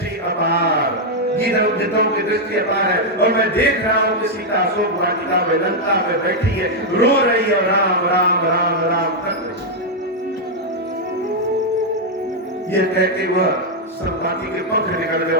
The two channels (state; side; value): normal; both; correlation -0.02